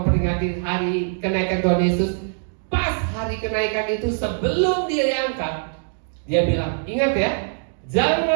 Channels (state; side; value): silent; left; digital silence